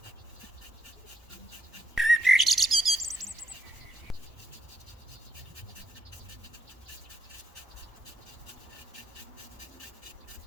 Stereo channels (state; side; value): normal; both; correlation 0.78